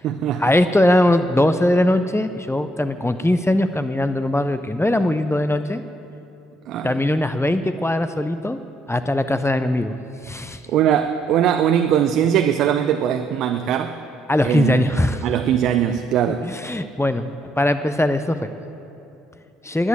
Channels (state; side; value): normal; both; correlation 0.74